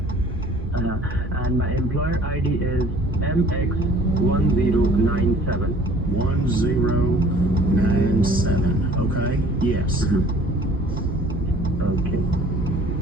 And my employer ID is MX1097. 1097, okay. Yes. Okay.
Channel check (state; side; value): normal; both; correlation 0.52